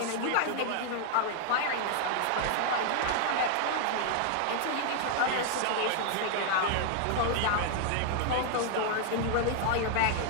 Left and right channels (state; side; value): different; both; correlation 0.00